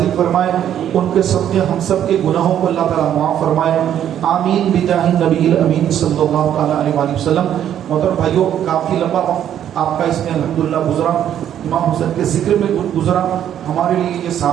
فرمائے، ان کے سب کے ہم سب کے گناہوں کو اللہ تعالیٰ معاف فرمائے، آمین بجاہ نبی الامین صلی اللہ تعالیٰ علیہ وآلہ وسلم۔ محترم بھائیوں، کافی لمبا آپ کا اس میں الحمدللہ گزرا، امام حسین کے ذکر میں گزرا، ہمارے لیے یہ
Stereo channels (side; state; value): left; quieter; 10.3 dB